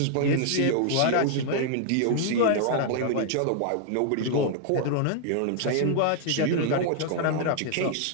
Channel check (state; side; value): different; both; correlation -0.01